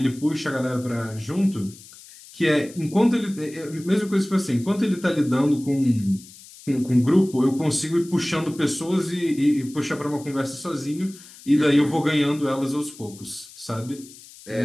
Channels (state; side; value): noise; left; hiss, 20 dB below the sound